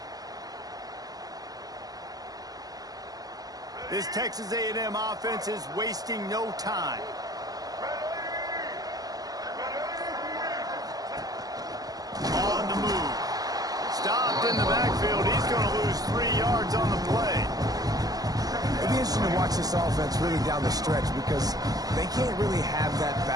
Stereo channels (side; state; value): left; late; 0.18 ms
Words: This Texas A&M offense is wasting no time. On the move. Stopped in the backfield. He's going to lose 3 yards on the play. It'll be interesting to watch this offense really down the stretch because they can't really have that